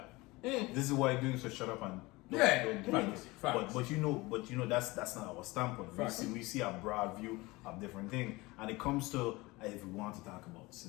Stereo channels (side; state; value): right; quieter; 22.1 dB